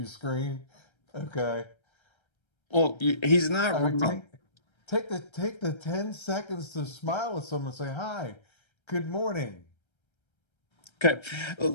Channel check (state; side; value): late; right; 1.3 ms